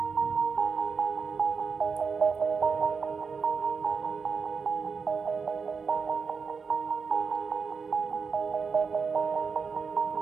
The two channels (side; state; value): left; quieter; 5.4 dB